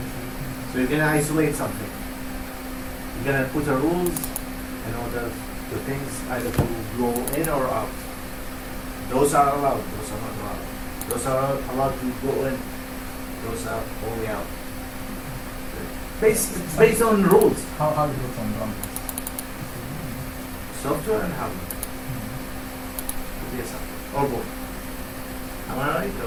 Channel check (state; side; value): identical; both; correlation 1.00